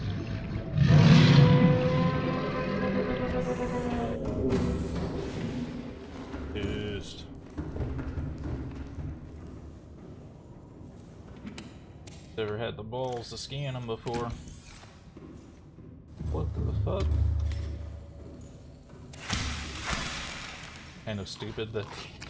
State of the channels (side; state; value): both; identical; correlation 1.00